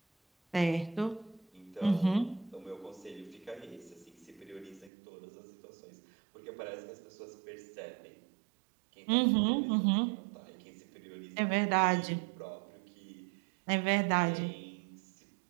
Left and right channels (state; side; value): drops out; left; at 4.9 s